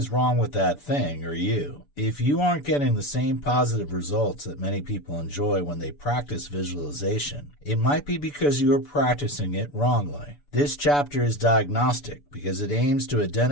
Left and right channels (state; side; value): late; right; 6.9 ms